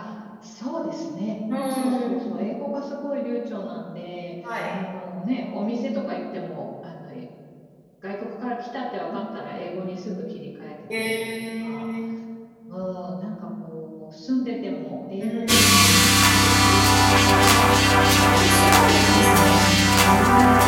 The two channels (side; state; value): both; identical; correlation 1.00